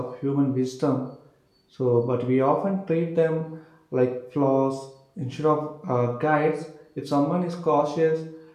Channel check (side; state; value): both; identical; correlation 1.00